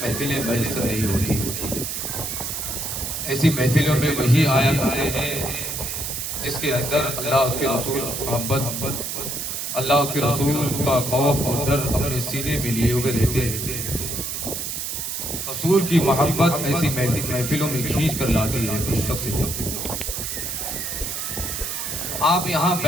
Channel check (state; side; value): noise; right; hiss, 4 dB below the sound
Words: محفلیں میسر نہیں ہوتی۔ ایسی محفلوں میں وہی آیا کرتے ہیں جس کے اندر اللہ اس کے رسول محبت، اللہ اس کے رسول کا خوف اور ڈر اپنے سینے میں لیے ہوئے رہتے ہیں۔ رسول کی محبت ایسی محفلوں میں کھینچ کر لاتی ہے اس شخص کو۔ آپ یہاں